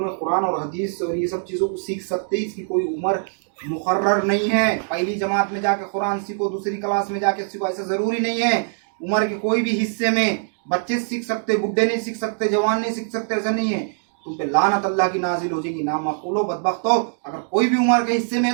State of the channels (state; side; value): silent; left; digital silence